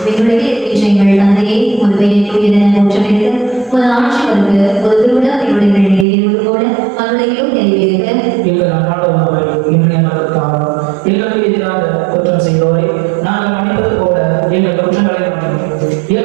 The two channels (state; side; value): drops out; left; at 6.1 s